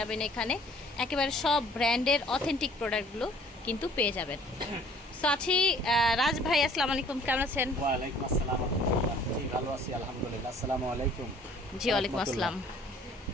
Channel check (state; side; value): normal; both; correlation 0.55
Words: এখানে, একেবারে সব ব্র্যান্ডের অথেন্টিক প্রোডাক্টগুলো কিন্তু পেয়ে যাবেন। সো আছি রাজ ভাই, আসসালামু আলাইকুম, কেমন আছেন? ওয়ালাইকুম আসসালাম। জি ভালো আছি আলহামদুলিল্লাহ। আসসালামু আলাইকুম। জি ওয়ালাইকুম আসসালাম।